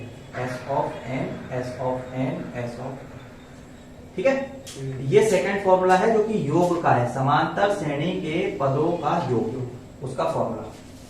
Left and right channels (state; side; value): identical; both; correlation 1.00